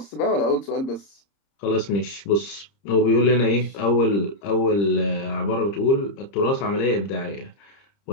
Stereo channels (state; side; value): late; right; 30 ms